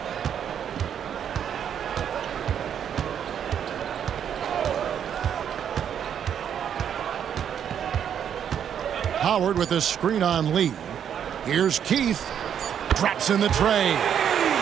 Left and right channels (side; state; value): left; quieter; 8.8 dB